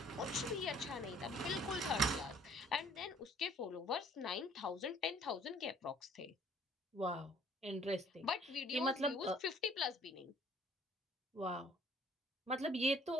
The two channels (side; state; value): both; normal; correlation 0.57